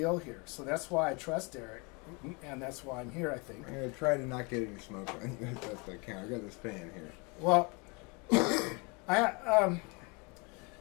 here. So that's why I trust Eric, and that's why I'm here, I think. I'm going to try to not get any smoke on you. That's I can. I got this fan here. Well,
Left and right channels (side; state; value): right; quieter; 30.5 dB